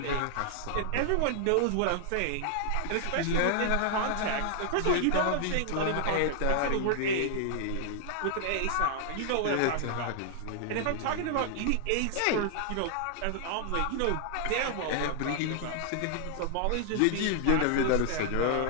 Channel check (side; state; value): both; different; correlation 0.00